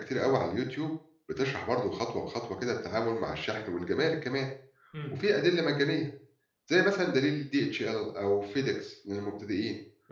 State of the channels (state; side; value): identical; both; correlation 1.00